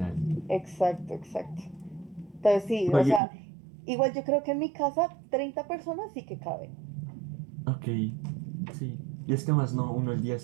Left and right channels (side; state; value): left; drops out; at 3.2 s